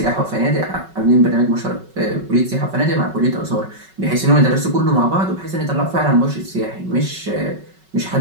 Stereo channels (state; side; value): late; left; 5.3 ms